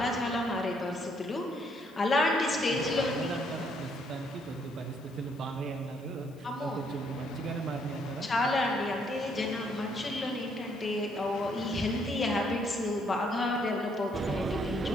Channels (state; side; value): noise; left; hiss, 29 dB below the sound